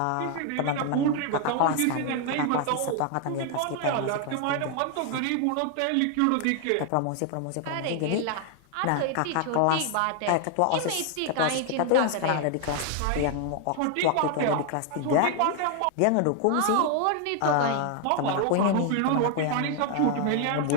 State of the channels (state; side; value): different; both; correlation 0.00